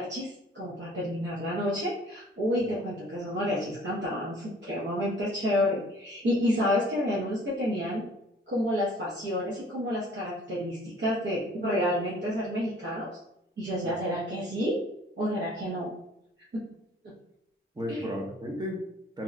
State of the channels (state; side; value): normal; both; correlation 0.53